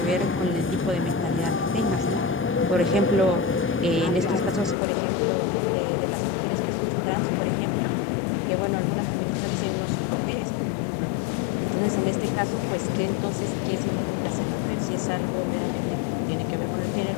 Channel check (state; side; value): drops out; right; at 4.8 s